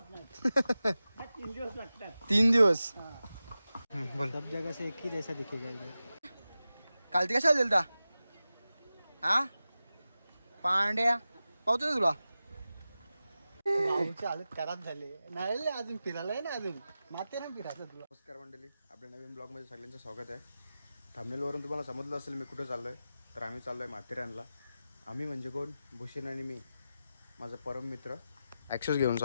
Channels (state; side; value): inverted; both; correlation -0.93